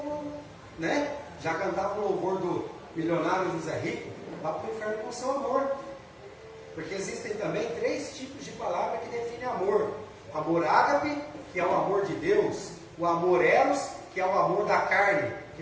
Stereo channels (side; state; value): both; identical; correlation 1.00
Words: né? Já cantava o louvor do milionário José Rico, vá para o inferno com seu amor, porque existem também 3 tipos de palavra que definem amor: amor ágape, que é o amor de Deus, o amor eros, que é o amor da carne, que